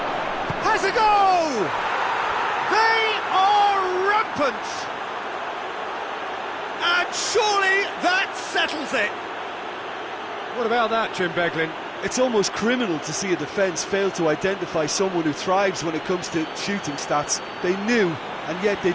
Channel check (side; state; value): both; identical; correlation 1.00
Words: Has a go! They are rampant! And surely that settles it! What about that, Jim Beglin? It's almost criminal to see a defence fail to identify someone who thrives when it comes to shooting stats. They knew, and yet they